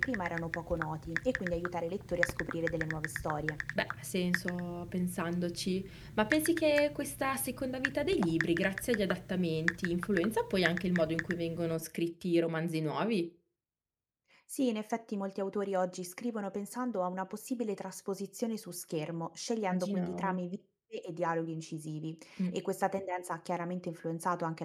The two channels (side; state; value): both; identical; correlation 1.00